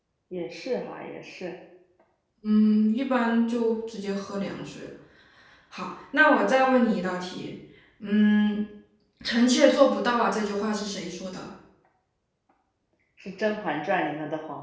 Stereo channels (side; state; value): both; identical; correlation 1.00